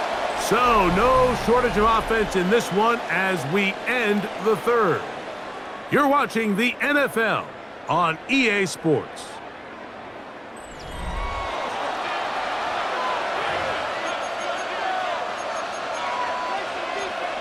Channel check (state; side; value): identical; both; correlation 1.00